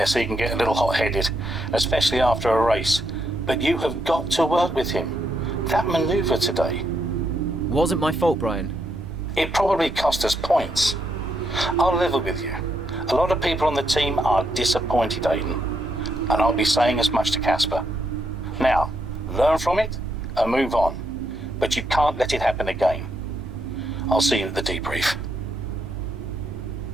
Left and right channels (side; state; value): both; normal; correlation 0.78